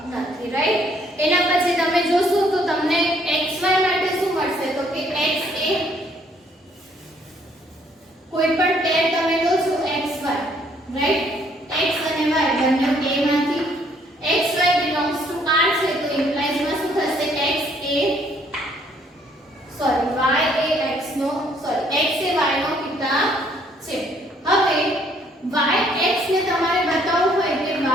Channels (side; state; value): both; normal; correlation 0.65